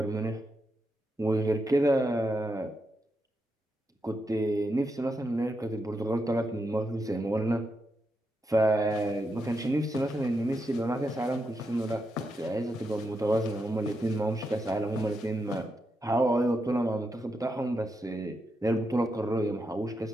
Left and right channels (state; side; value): normal; both; correlation 0.84